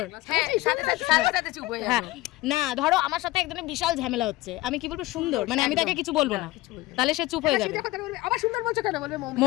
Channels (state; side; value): quieter; right; 19.3 dB